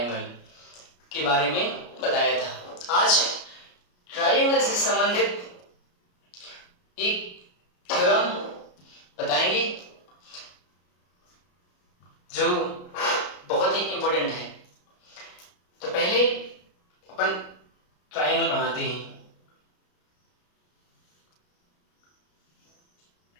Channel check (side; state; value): right; late; 33 ms